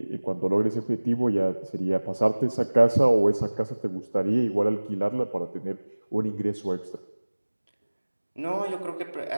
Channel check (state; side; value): inverted; both; correlation -1.00